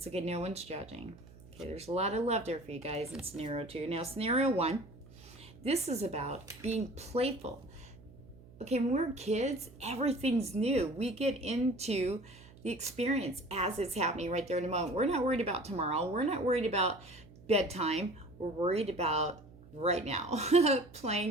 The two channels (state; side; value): noise; right; hum, 21 dB below the sound